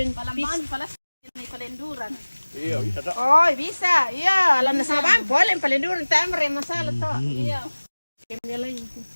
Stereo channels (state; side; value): inverted; both; correlation -1.00